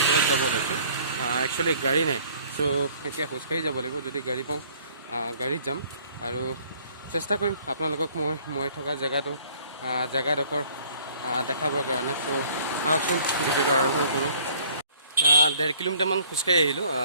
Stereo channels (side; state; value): both; inverted; correlation -0.56